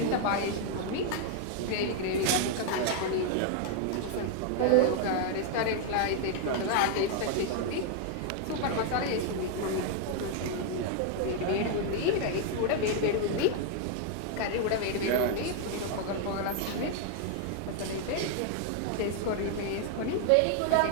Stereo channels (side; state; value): both; different; correlation 0.00